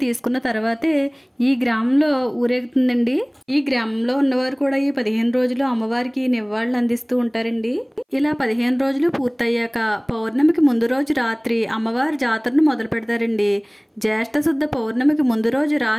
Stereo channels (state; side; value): identical; both; correlation 1.00